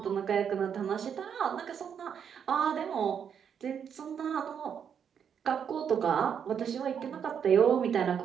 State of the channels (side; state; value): left; quieter; 7.8 dB